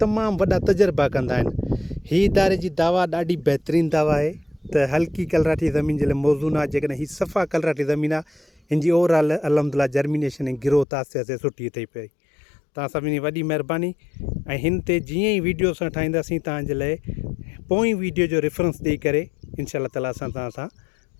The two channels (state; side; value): drops out; right; at 10.9 s